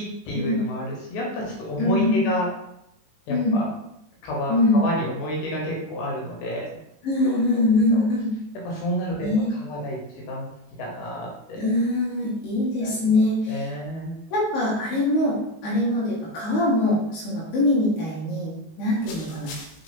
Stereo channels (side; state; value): right; late; 19 ms